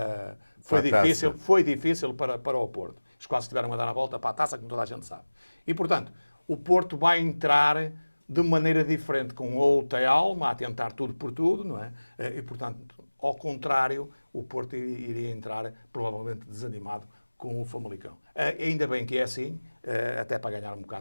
foi difícil para o Porto. Eles quase tiveram a dar a volta para a taça, como toda a gente sabe. E, portanto, o Porto vai entrar de maneira diferente, com outra alma, a tentar tudo por tudo, não é? E, portanto, ao contrário, o Porto iria entrar provavelmente desanimado com o Famalicão. Ainda bem que é assim, até para ganhar um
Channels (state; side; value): inverted; both; correlation -1.00